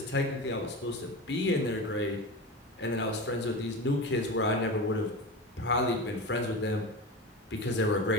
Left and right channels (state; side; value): normal; both; correlation 0.27